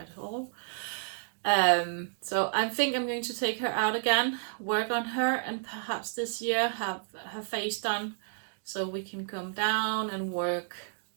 at all. So I think I'm going to take her out again, work on her, and perhaps this year have her face done, so we can come down and work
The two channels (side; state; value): left; silent; digital silence